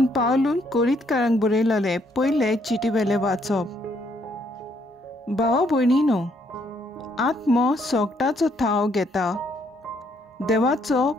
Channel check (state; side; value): normal; both; correlation 0.70